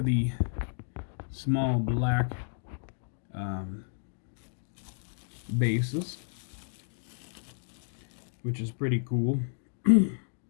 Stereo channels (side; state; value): right; silent; digital silence